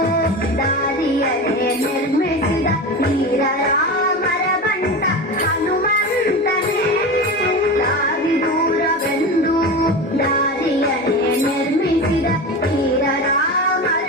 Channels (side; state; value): both; normal; correlation 0.26